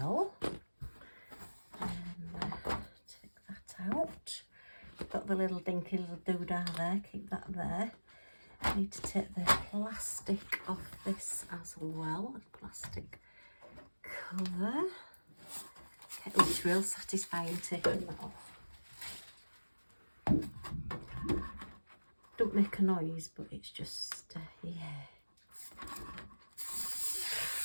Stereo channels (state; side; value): inverted; both; correlation -1.00